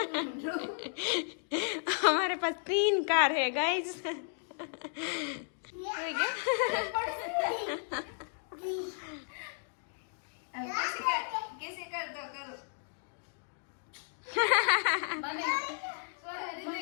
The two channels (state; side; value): silent; right; digital silence